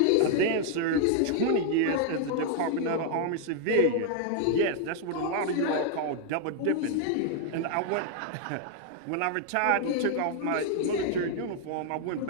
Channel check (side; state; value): both; different; correlation 0.00